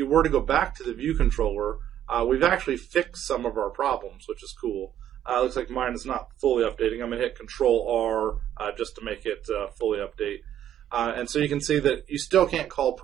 were to go back to the view controller, we've actually fixed some of our problems, which is cool. Looks like mine is not fully updating. I'm going to hit Control-R just to make it fully update. And so you can see that you still can't call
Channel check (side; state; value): left; quieter; 10.9 dB